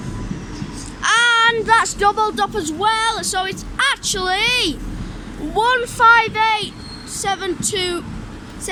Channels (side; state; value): both; identical; correlation 1.00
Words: And that's doubled up as well, so it's actually